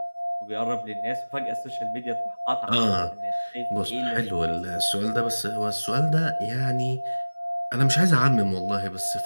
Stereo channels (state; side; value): inverted; both; correlation -1.00